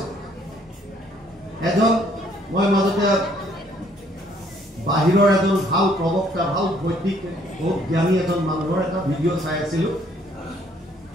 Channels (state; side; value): normal; both; correlation 0.64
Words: এজন মই মাজতে বাহিৰৰ এজন ভাল প্ৰবক্তা, ভাল বৈদিক বহুত জ্ঞানী এজন মানুহৰ এটা ভিডিঅ' চাই আছিলোঁ।